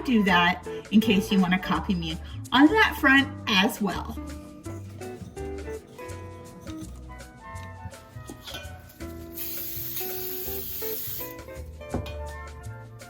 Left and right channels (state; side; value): identical; both; correlation 1.00